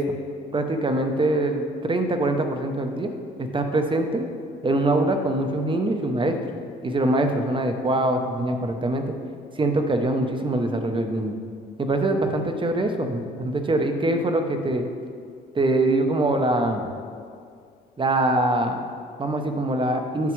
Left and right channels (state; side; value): normal; both; correlation 0.57